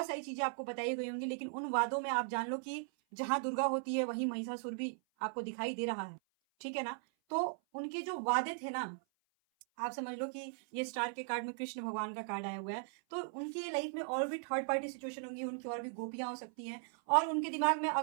सारी चीजें आपको बताई गई होंगी, लेकिन उन वादों में आप जान लो कि जहां दुर्गा होती है वहीं महिषासुर भी आपको दिखाई दे रहा है। ठीक है ना। तो उनके जो वादे थे ना, आप समझ लो कि ये स्टार के कार्ड में कृष्ण भगवान का कार्ड आया हुआ है, तो उनके लाइफ में और भी थर्ड पार्टी सिचुएशन होंगी, उनकी और भी गोपियां हो सकती हैं, और उनके दिमाग में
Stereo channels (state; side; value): silent; left; 52 dB below the other